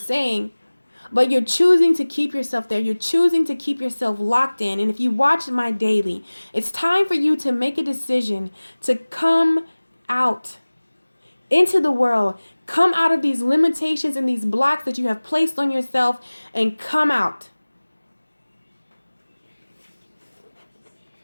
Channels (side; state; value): both; inverted; correlation -1.00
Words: But you're choosing to keep yourself there. You're choosing to keep yourself locked in. And if you watch my daily, it's time for you to make a decision to come out into the world. Come out of these limitations and these blocks that you have placed on yourself and come out.